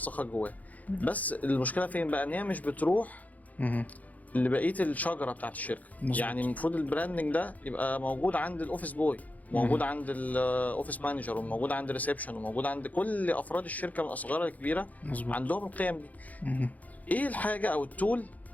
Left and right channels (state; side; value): late; right; 0.076 ms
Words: جواه، بس المشكله فين بقى؟ ان هي مش بتروح لبقيه الشجره بتاعت الشركه. يعني المفروض البراندنج ده يبقى موجود عند الاوفيس بوي، موجود عند الاوفيس مانجر، وموجود عند الريسبشن، وموجود عند كل افراد الشركه من اصغرها لكبيره. عندهم القيم دي. ايه الحاجه او التول